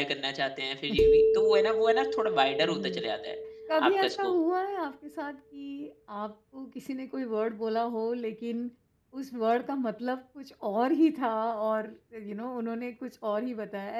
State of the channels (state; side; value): identical; both; correlation 1.00